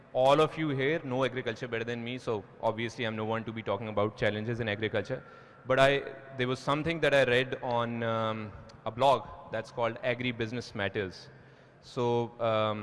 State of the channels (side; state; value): both; identical; correlation 1.00